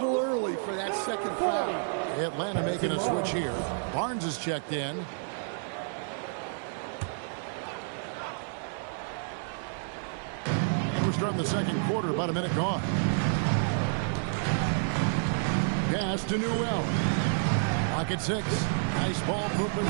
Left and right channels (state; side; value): silent; left; 57 dB below the other